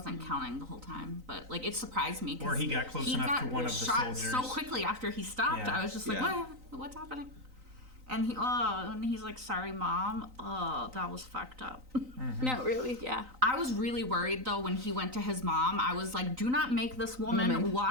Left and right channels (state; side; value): late; left; 3.9 ms